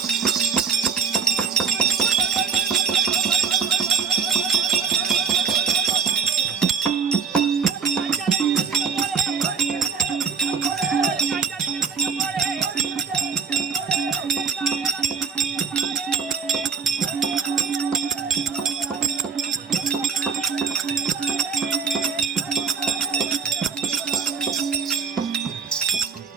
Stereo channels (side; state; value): left; quieter; 6.1 dB